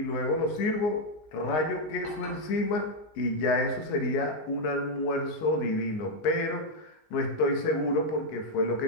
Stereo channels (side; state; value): right; late; 19 ms